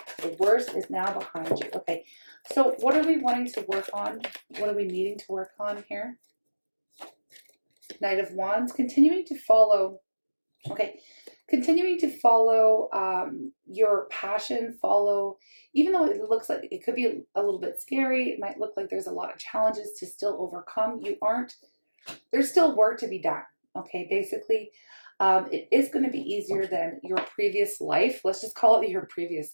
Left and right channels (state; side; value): inverted; both; correlation -1.00